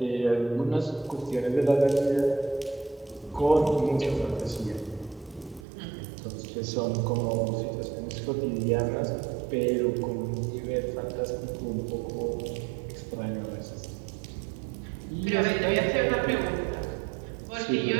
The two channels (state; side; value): drops out; left; at 5.7 s